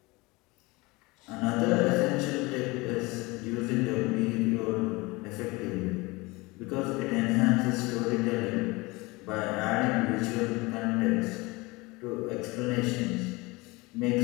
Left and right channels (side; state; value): right; quieter; 23.7 dB